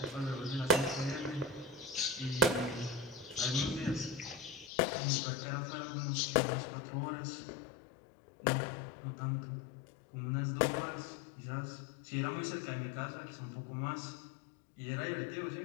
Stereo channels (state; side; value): drops out; right; at 4.7 s